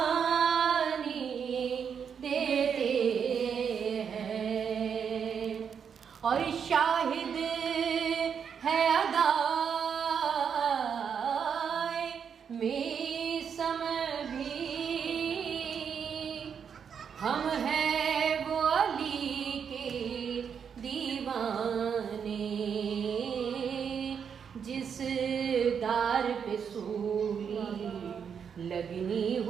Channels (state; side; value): quieter; left; 7.2 dB